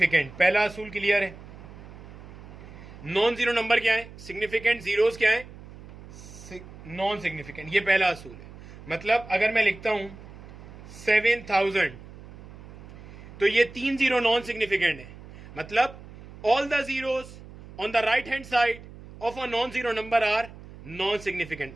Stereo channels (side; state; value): right; noise; hum, 17 dB below the sound